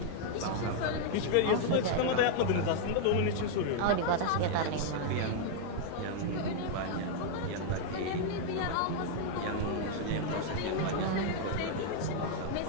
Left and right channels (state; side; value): different; both; correlation -0.01